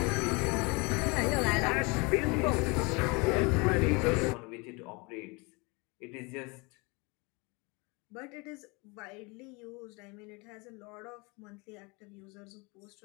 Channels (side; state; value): right; quieter; 28.2 dB